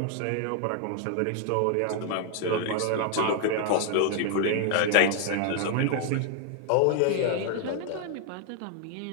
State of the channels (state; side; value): different; both; correlation 0.00